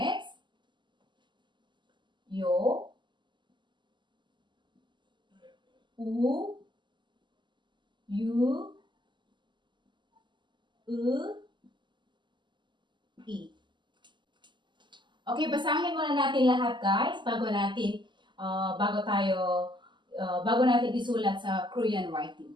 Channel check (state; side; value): late; left; 0.22 ms